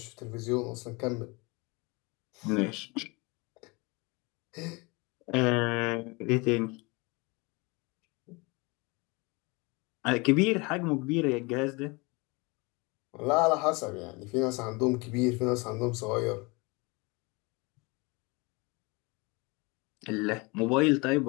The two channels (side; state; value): right; quieter; 26.9 dB